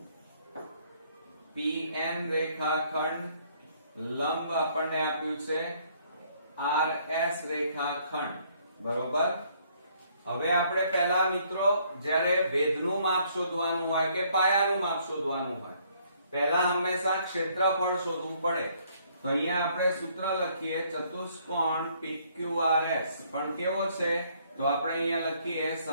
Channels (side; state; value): both; inverted; correlation -0.65